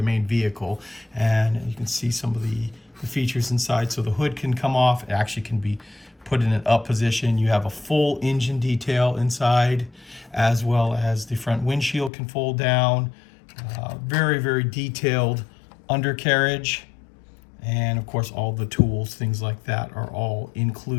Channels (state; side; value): drops out; right; at 12.1 s